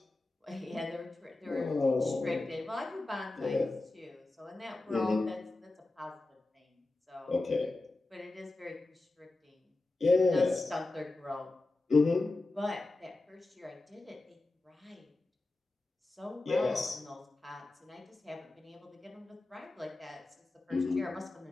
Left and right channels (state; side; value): quieter; right; 3.0 dB